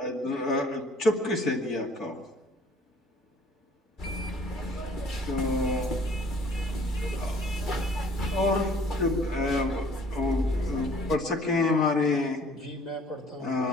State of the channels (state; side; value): normal; both; correlation 0.55